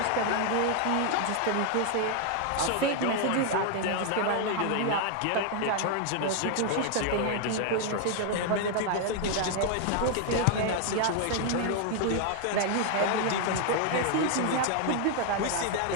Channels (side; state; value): both; different; correlation 0.00